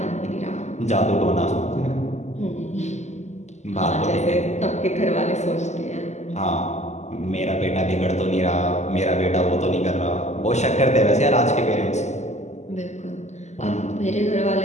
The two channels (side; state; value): right; late; 0.33 ms